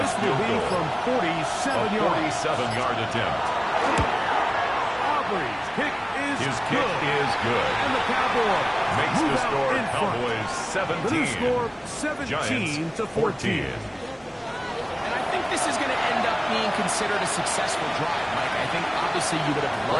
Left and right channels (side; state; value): both; identical; correlation 1.00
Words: This will field be goal. from 47 A yards. 47-yard attempt. Aubrey's kick is His kick good. is good. And the Cowboys Makes move the out score in front. Cowboys The new 17. score, Giants 17 to 14. 14. And I think this is going to end up being considered a successful drive, Mike. I think obviously you would have